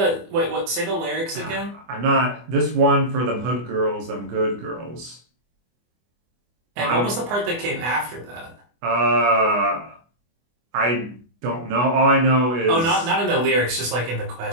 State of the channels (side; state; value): left; late; 24 ms